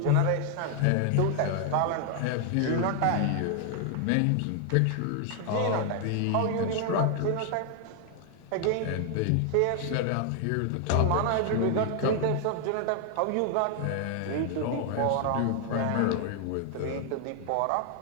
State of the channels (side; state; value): both; different; correlation 0.00